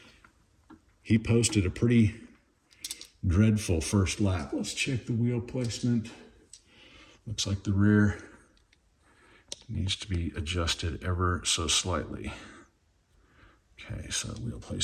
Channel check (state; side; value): identical; both; correlation 1.00